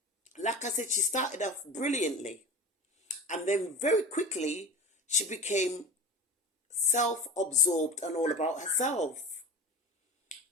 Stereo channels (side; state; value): both; normal; correlation 0.34